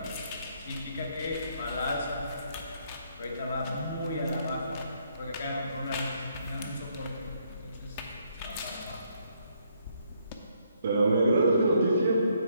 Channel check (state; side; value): inverted; both; correlation -0.71